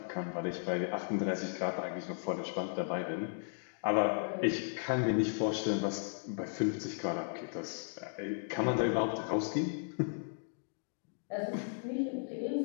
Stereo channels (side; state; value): right; silent; digital silence